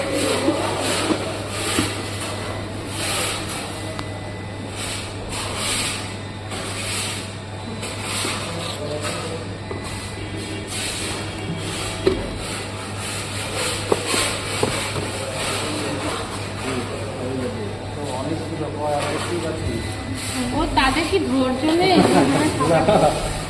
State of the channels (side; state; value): both; identical; correlation 1.00